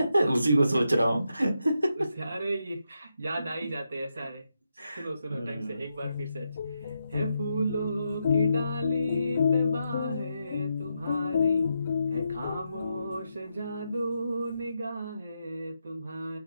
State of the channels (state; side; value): inverted; both; correlation -0.84